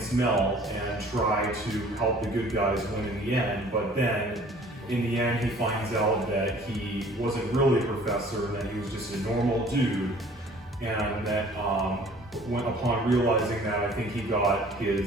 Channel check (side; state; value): both; normal; correlation 0.52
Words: Mel and try to help the good guys win in the end. But then in the end, he finds out that he wasn't really a professor, and that he was just a normal dude, and that upon realizing that, I think he got